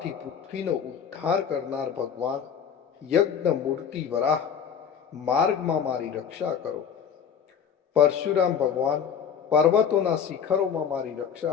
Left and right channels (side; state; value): right; quieter; 7.7 dB